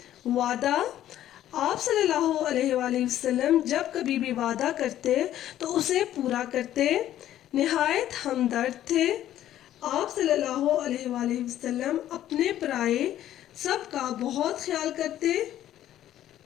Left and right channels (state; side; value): quieter; right; 12.3 dB